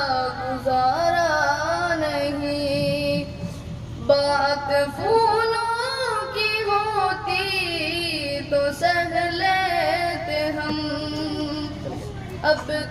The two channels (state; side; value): identical; both; correlation 1.00